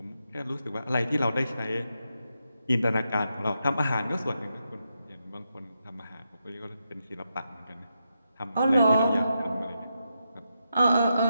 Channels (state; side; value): inverted; both; correlation -0.85